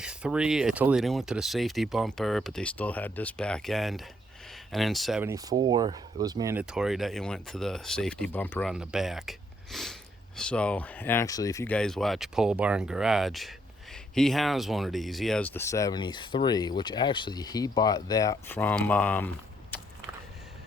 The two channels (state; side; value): normal; both; correlation 0.71